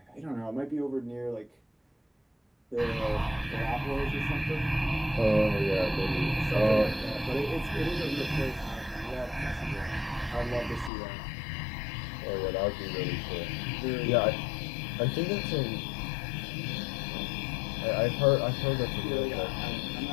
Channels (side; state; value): right; drops out; at 10.9 s